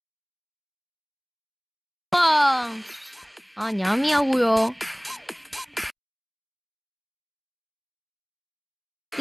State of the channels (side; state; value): both; identical; correlation 1.00